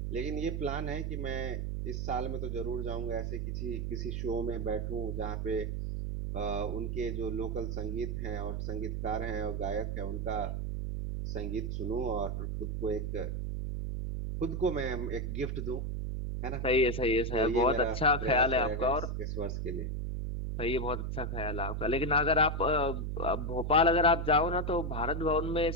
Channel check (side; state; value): right; noise; hum, 2 dB below the sound